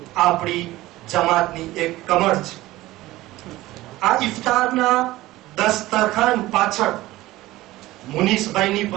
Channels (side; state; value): left; quieter; 17.4 dB